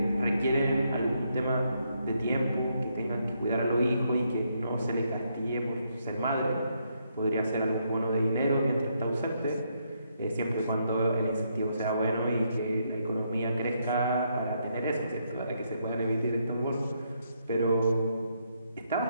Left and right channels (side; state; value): both; inverted; correlation -0.76